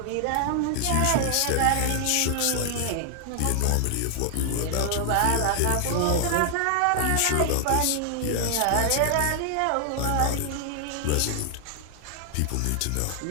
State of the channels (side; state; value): both; different; correlation 0.00